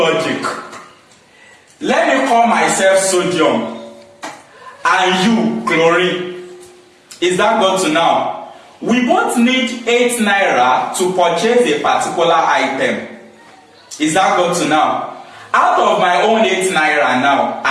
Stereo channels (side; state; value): both; identical; correlation 1.00